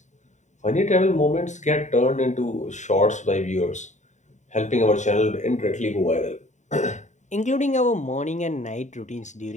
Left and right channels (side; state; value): right; late; 0.34 ms